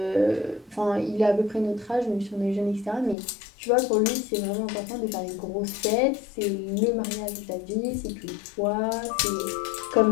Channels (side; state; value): right; drops out; at 3.2 s